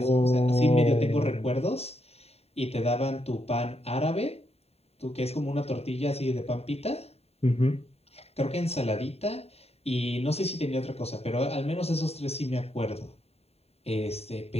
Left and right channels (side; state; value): right; late; 0.30 ms